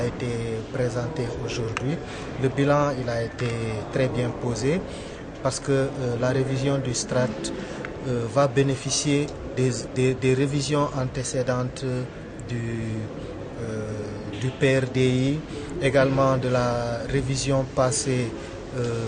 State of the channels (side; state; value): both; identical; correlation 1.00